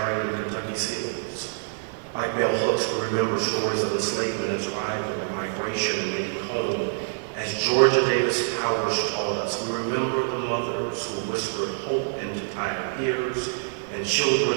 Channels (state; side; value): silent; left; 61 dB below the other